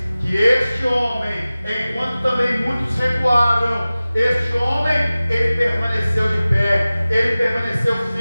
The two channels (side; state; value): both; inverted; correlation -0.97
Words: que este homem, enquanto também muitos recuaram, Este homem, ele permaneceu de pé, ele permaneceu